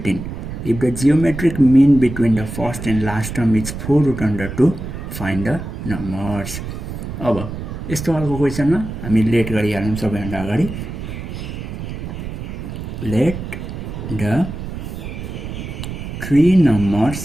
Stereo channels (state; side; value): noise; right; rumble, 8 dB below the sound